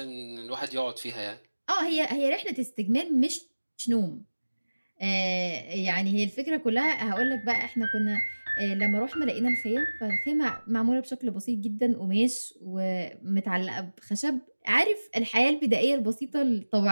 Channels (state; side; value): inverted; both; correlation -1.00